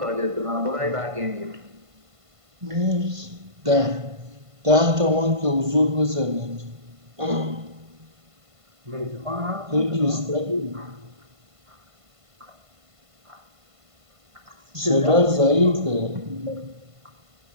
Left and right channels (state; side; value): late; left; 1.5 ms